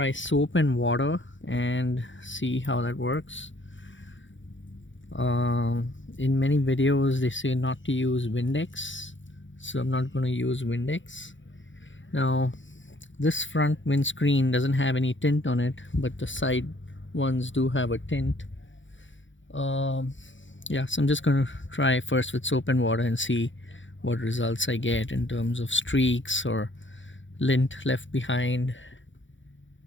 soap and water and see how that works. In many videos they say not to use Windex, so I'm not gonna use Windex. Now this front windscreen doesn't have any tint on it, but the side ones do have a tint. Yeah, so I'm just gonna try first with soap and water and see what results I get in terms of streaks or lint left behind,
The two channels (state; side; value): late; right; 0.55 ms